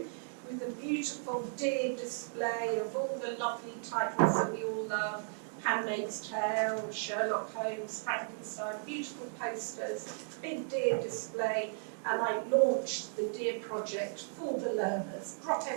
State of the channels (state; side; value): silent; left; digital silence